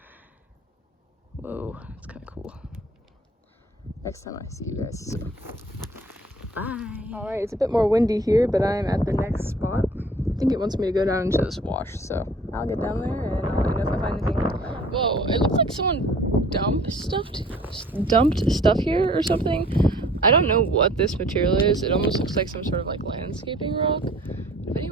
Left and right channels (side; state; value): both; normal; correlation 0.51